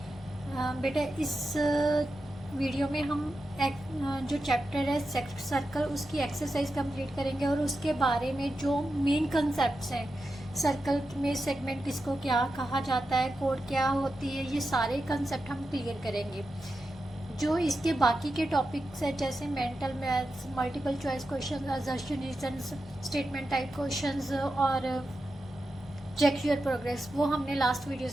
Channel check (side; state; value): both; normal; correlation 0.90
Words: बेटा इस वीडियो में हम जो चैप्टर है सर्कल उसकी एक्सरसाइज कंप्लीट करेंगे और उसके बारे में जो मेन कंसेप्ट्स हैं, सर्कल में सेगमेंट किसको क्या कहा जाता है, कोड क्या होती है, ये सारे कंसेप्ट हम क्लियर करेंगे। जो इसके बाकी के टॉपिक्स है जैसे mental maths, multiple choice question, assertion reasons, statement type questions और चेक योर प्रोग्रेस, वो हमने लास्ट